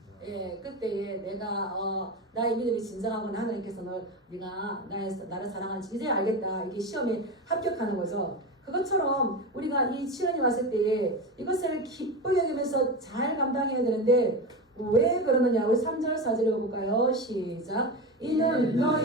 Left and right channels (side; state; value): both; normal; correlation 0.22